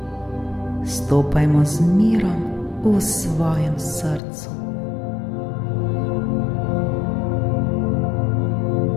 stopajmo z mirom v svojem srcu.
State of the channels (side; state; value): right; drops out; at 4.2 s